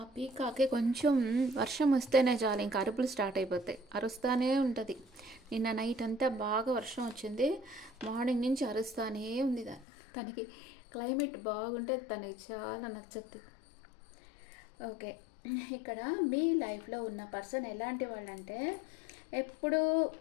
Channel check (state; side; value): drops out; right; at 9.9 s